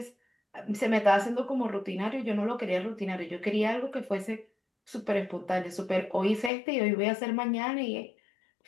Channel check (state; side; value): drops out; right; at 6.5 s